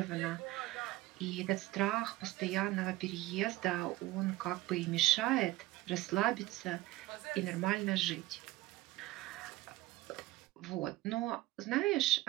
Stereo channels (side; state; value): left; quieter; 17.8 dB